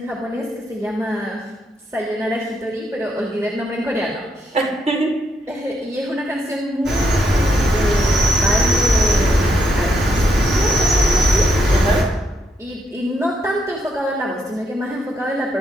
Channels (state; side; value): normal; both; correlation 0.77